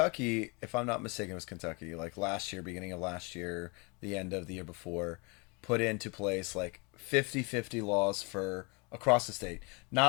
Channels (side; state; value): right; quieter; 30.3 dB